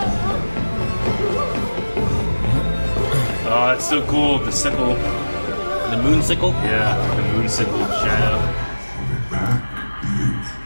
Oh, that's so cool. The sickle. The moon sickle? Yeah, the moon sickle shadow.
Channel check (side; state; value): both; inverted; correlation -1.00